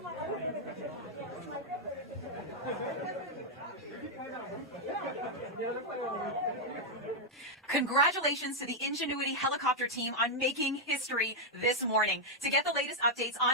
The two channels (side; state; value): both; normal; correlation -0.02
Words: Congratulations to the Ingenuity helicopter team on making history this morning. To get the latest updates